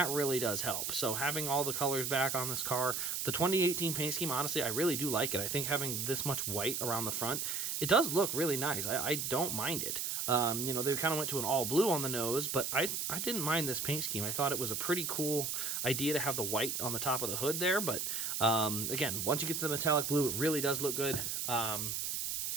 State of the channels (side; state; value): right; noise; hiss, 1 dB below the sound